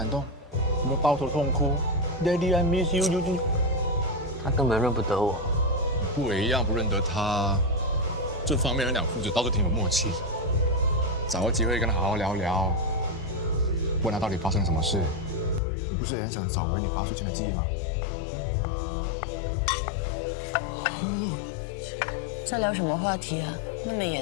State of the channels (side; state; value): right; drops out; at 15.6 s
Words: 动？有没有抱头痛哭 ？Daddy, I miss you。他根本认不得我。不也一样不认得他？这方面两父子倒是挺有默契的。找个机会跟他好好聊聊，问他到底发生什么事。你不是也很想找回你8岁前的记忆吗？在聊什么话题啊？那么